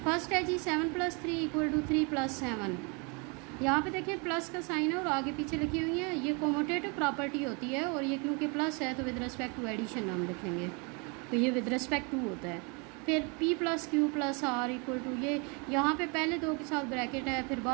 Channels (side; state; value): left; quieter; 32.6 dB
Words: फर्स्ट है जी 7 + 3 = 3 + 7। यहाँ पे देखिए प्लस का साइन है और आगे पीछे लिखी हुई है। ये कोमोटेटिव प्रॉपर्टी होती है, और ये क्योंकि प्लस है तो विद रिस्पेक्ट टू एडिशन हम लिखेंगे, तो ये विद रिस्पेक्ट टू होता है। फिर P + Q + R = ये यहाँ पे पहले दो के साथ ब्रैकेट है, फिर